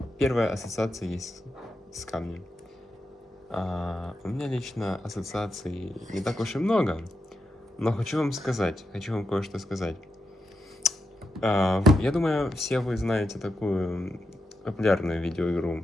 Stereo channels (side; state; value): both; normal; correlation 0.86